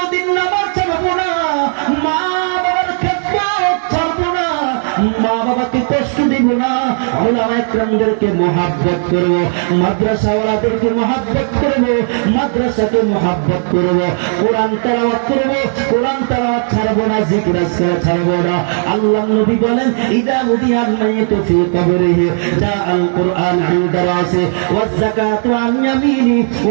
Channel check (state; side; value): silent; left; 67 dB below the other